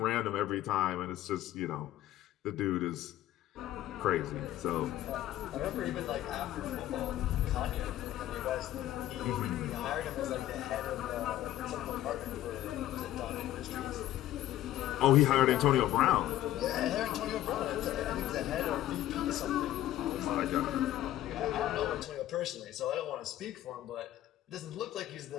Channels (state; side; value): quieter; right; 13.6 dB